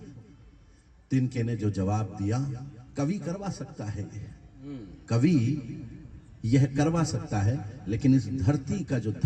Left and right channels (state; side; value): identical; both; correlation 1.00